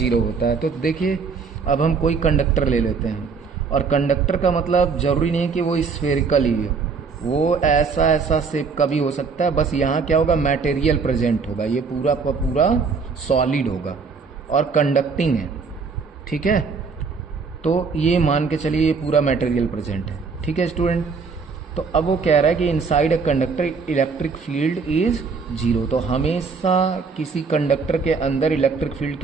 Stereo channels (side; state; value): left; quieter; 5.1 dB